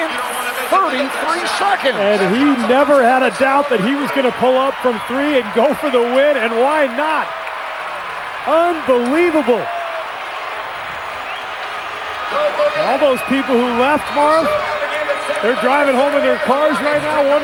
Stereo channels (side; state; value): both; identical; correlation 1.00